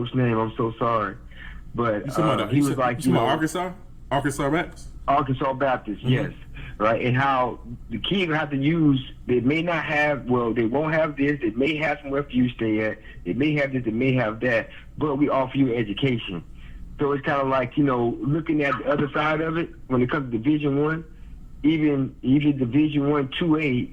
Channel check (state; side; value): identical; both; correlation 1.00